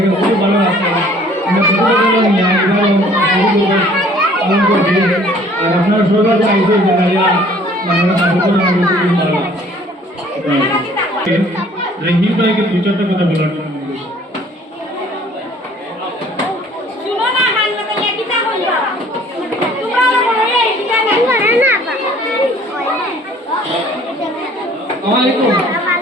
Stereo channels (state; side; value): normal; both; correlation 0.55